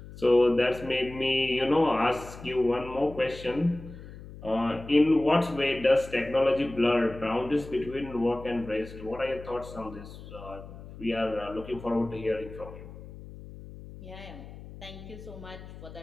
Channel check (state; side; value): noise; left; hum, 15 dB below the sound